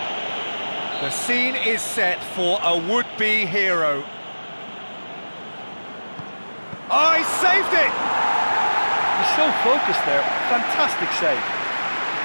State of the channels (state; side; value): inverted; both; correlation -1.00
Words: The scene is set for a would-be hero. Oh, he saved it! He's so focused there. Fantastic save.